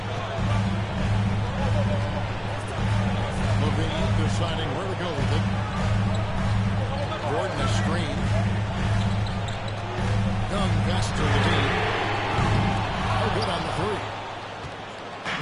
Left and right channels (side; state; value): both; identical; correlation 1.00